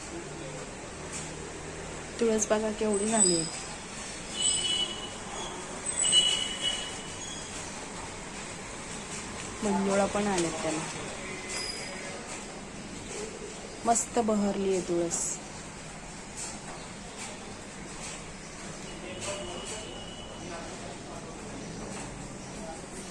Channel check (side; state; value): both; identical; correlation 1.00